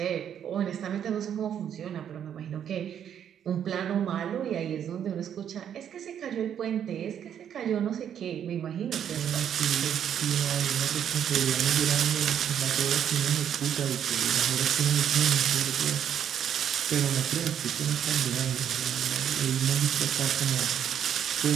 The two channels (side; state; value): left; quieter; 9.2 dB